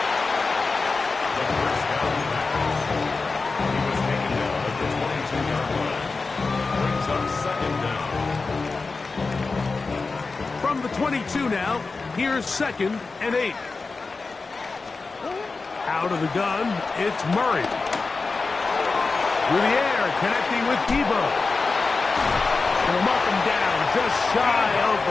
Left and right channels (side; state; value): right; quieter; 4.1 dB